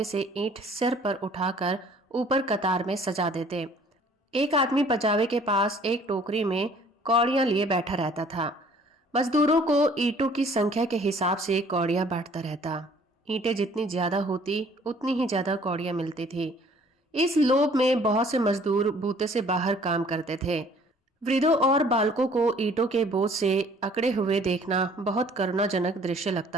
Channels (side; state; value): both; normal; correlation 0.56